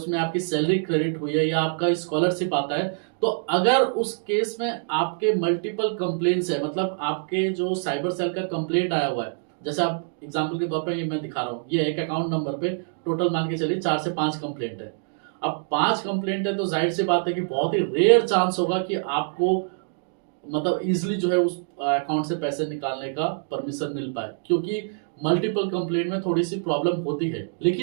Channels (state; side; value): silent; left; digital silence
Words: आपकी सैलरी क्रेडिट हुई है या आपका स्कॉलरशिप आता है, तो अगर उस केस में आपके मल्टीपल कंप्लेंट्स है, मतलब आपके जो साइबर सेल का कंप्लेंट आया हुआ है, जैसे आप एग्जांपल के तौर पे ये मैं दिखा रहा हूँ, ये एक अकाउंट नंबर पे टोटल मान के चलिए 4 से 5 कंप्लेंट है। अब 5 कंप्लेंट है तो जाहिर सी बात है कि बहुत ही रेयर चांस होगा कि आपको मतलब इजिली जो है उस अकाउंट से पैसे निकालने का परमिशन मिल पाए, क्योंकि मल्टीपल कंप्लेंट में थोड़ी सी प्रॉब्लम होती है।